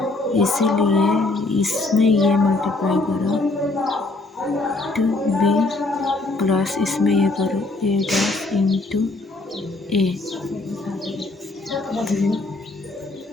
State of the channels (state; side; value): quieter; right; 3.1 dB